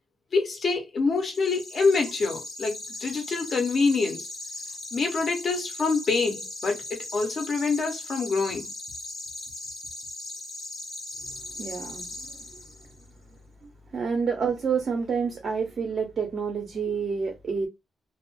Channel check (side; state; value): both; normal; correlation 0.79